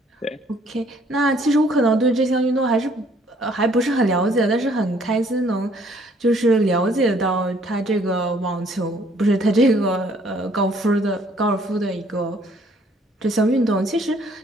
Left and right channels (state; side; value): normal; both; correlation 0.62